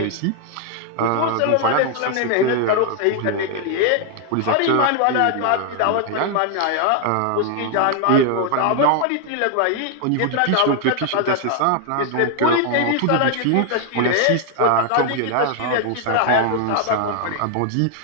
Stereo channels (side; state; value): both; different; correlation 0.00